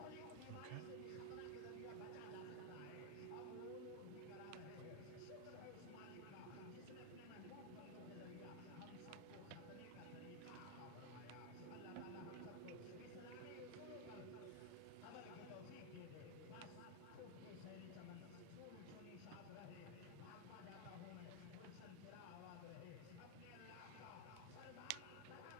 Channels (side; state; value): both; different; correlation 0.00